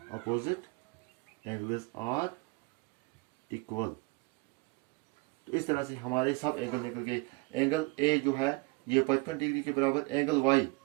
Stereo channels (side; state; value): left; quieter; 26.0 dB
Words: opposite angles are equal. तो इस तरह से हमारे सब एंगल निकल गए। एंगल ए जो है ये 55 डिग्री के बराबर, एंगल